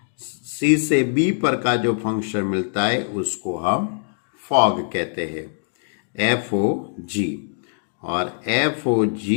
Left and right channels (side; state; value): right; silent; digital silence